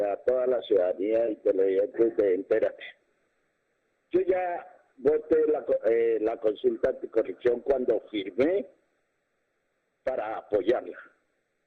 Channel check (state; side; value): identical; both; correlation 1.00